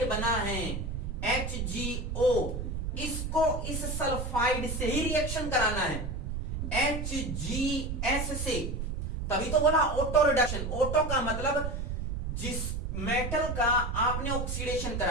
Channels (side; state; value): right; noise; rumble, 3 dB below the sound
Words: बना है HgO, इसको इस सल्फाइड से ही रिएक्शन कराना है, HgS से, तभी तो बोला ऑटो रिडक्शन। ऑटो का मतलब जिस मेटल का आपने ऑक्सीडेशन